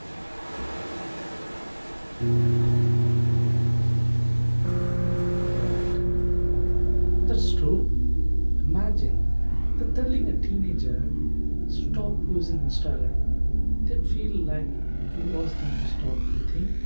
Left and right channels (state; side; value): inverted; both; correlation -1.00